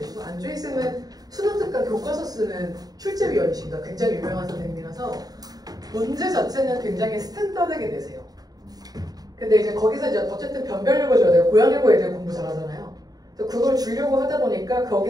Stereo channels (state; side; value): late; left; 0.18 ms